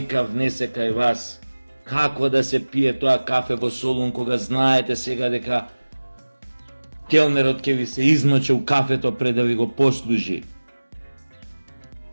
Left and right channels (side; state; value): both; inverted; correlation -1.00